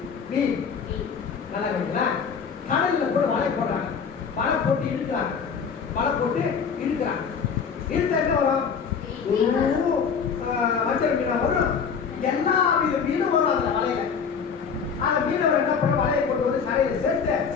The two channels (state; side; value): quieter; right; 6.3 dB